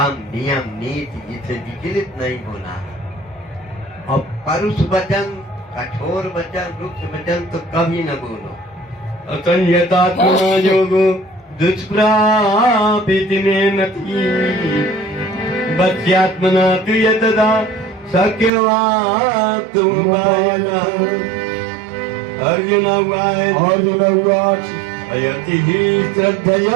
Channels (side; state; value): left; drops out; at 18.5 s